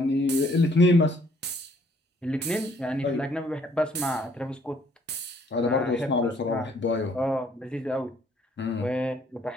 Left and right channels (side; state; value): both; normal; correlation 0.63